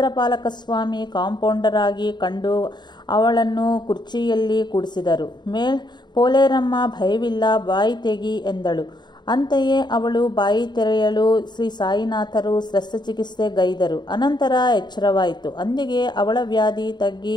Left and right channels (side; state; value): right; late; 0.21 ms